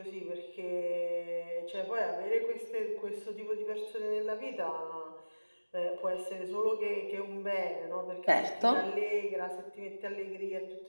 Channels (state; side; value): inverted; both; correlation -1.00